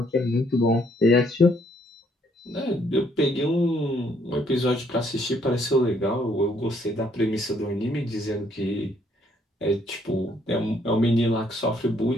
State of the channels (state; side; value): normal; both; correlation 0.68